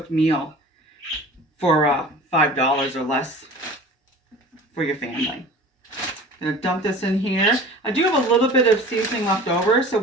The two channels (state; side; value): normal; both; correlation 0.41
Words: meal for $5 or less for your family. I'm going to dump this in here. I do have a little bit of seasoning left over, so